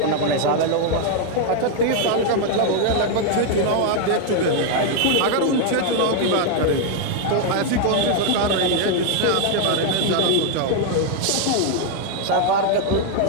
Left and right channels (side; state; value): both; different; correlation 0.00